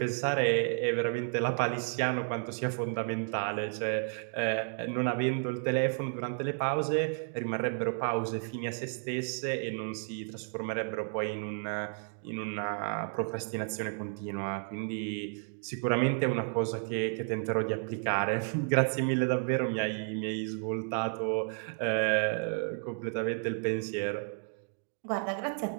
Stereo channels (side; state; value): left; silent; 56 dB below the other